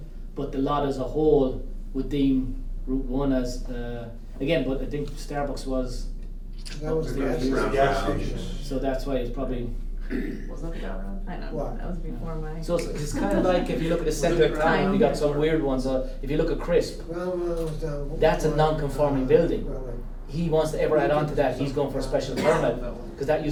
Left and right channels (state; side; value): identical; both; correlation 1.00